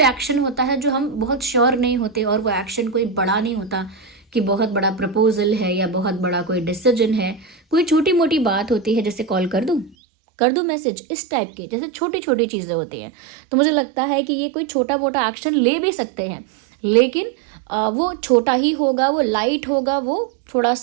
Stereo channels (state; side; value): drops out; left; at 10.0 s